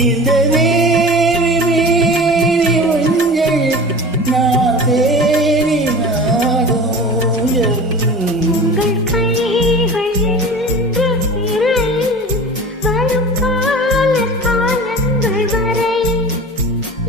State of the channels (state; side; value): normal; both; correlation 0.37